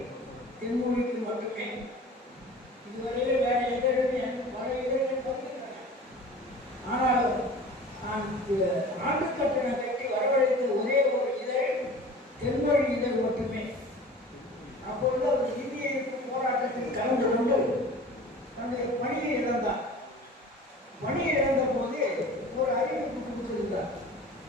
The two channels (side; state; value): both; normal; correlation 0.41